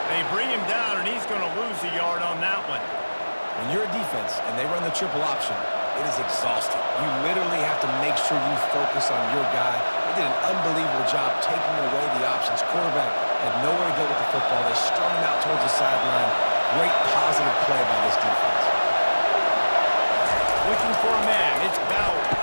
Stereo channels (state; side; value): inverted; both; correlation -1.00